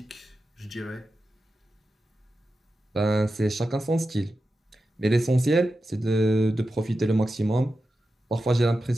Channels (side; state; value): both; normal; correlation 0.91